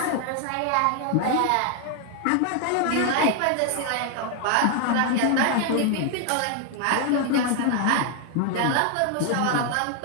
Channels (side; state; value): both; different; correlation 0.00